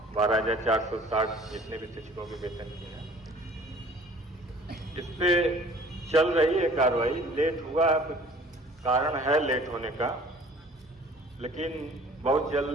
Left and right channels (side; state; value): both; normal; correlation 0.50